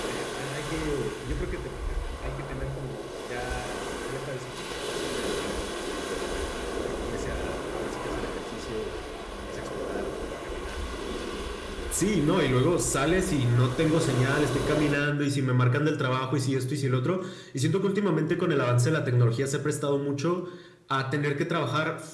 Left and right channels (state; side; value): identical; both; correlation 1.00